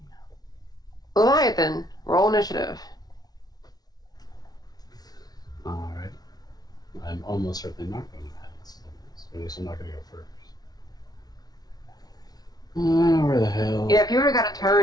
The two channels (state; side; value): late; right; 0.19 ms